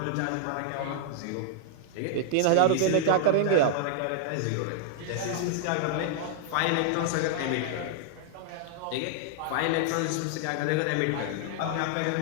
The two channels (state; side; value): different; both; correlation -0.01